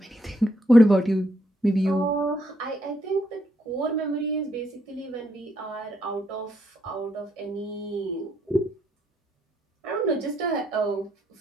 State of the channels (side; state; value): both; normal; correlation 0.75